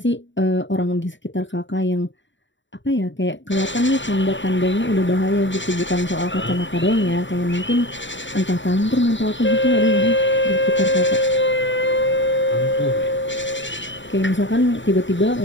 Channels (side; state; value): right; late; 0.54 ms